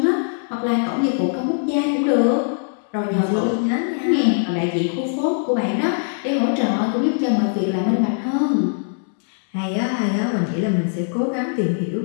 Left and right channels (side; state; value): right; silent; digital silence